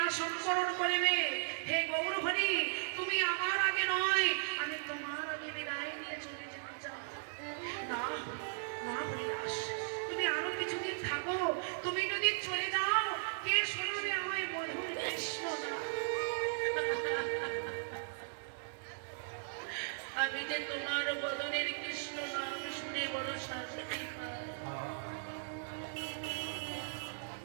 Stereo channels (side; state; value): left; silent; digital silence